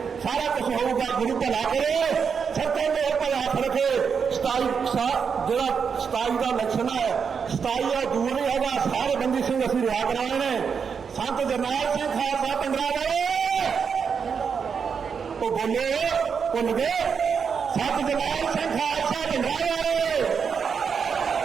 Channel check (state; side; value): quieter; left; 6.3 dB